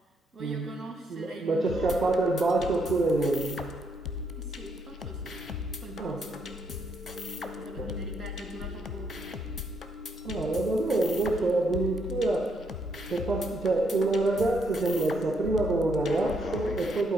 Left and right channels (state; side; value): normal; both; correlation 0.74